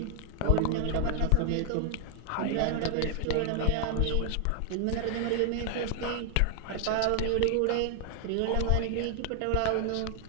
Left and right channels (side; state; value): both; different; correlation 0.00